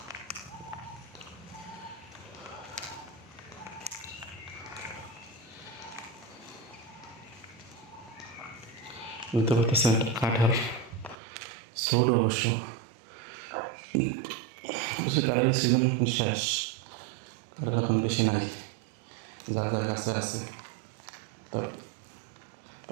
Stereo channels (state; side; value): drops out; left; at 11.2 s